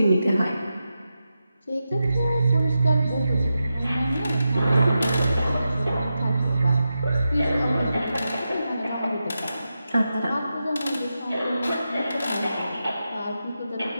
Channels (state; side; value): inverted; both; correlation -0.89